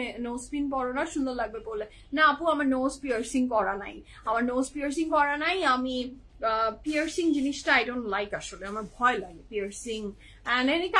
নোজ পিন পরো না, সুন্দর লাগবে বলে। না আপু, আমার নোজ পিয়ার্সিং করা নাই, আমার নোজ পিয়ার্সিং করা নাই। আমি পিয়ার্সিং জিনিসটা আই ডোন্ট লাইক, আসলে আমার ভয় লাগে piercing and any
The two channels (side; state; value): both; identical; correlation 1.00